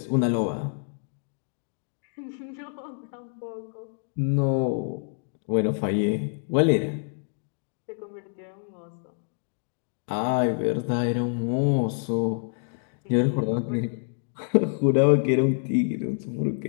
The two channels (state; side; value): silent; right; digital silence